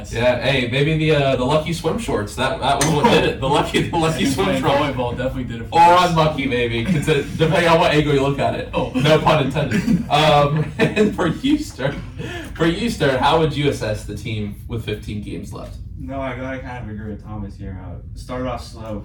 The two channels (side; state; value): both; identical; correlation 1.00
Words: Yeah, hey, maybe the lucky swim shorts. That was what did it. The lucky swim shorts. Volleyball definitely did it for us. us. Or unlucky, maybe, depending on what angle you look at it. Oh. No pun intended. And for you, Stern, how would you assess the team with 15 games left? No, I gotta kind of agree with Thomas here. Started off slow,